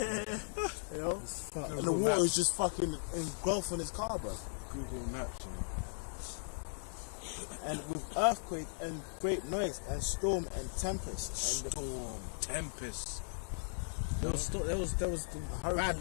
you know, Fuck. and the water is just fucking engulfing his car, bro. Google Maps. And with earthquake and great noise and storm and tempest and the Storm, tempest. There was the bad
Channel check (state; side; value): silent; right; digital silence